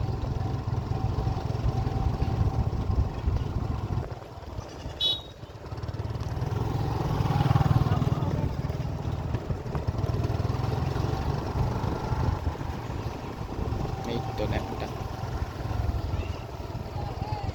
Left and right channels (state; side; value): identical; both; correlation 1.00